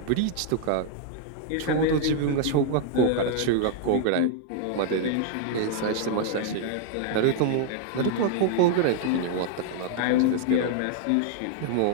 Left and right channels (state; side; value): different; both; correlation 0.00